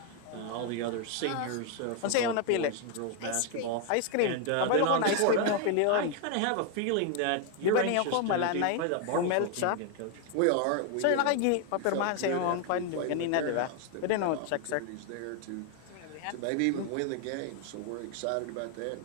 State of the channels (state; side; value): different; both; correlation 0.01